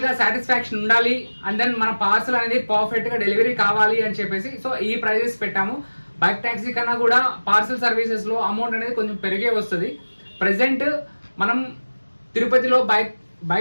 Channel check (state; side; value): inverted; both; correlation -1.00